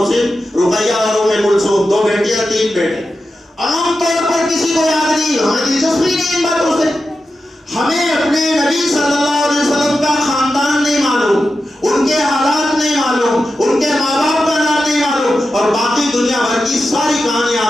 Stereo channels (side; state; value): both; normal; correlation 0.91